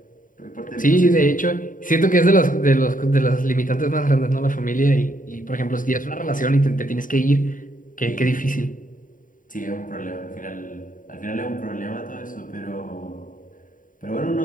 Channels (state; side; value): late; right; 0.39 ms